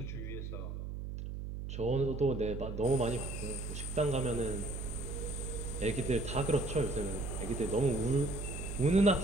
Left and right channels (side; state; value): right; noise; hum, 6 dB below the sound